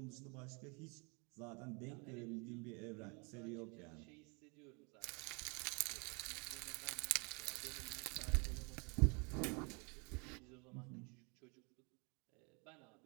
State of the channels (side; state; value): left; quieter; 32.2 dB